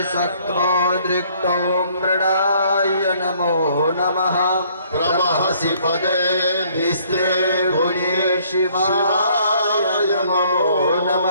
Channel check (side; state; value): both; inverted; correlation -0.62